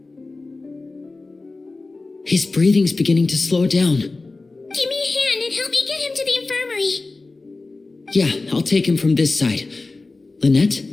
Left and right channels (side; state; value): right; quieter; 3.5 dB